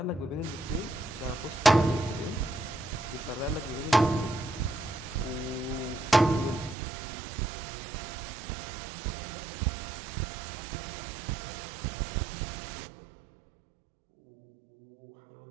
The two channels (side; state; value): left; drops out; at 6.8 s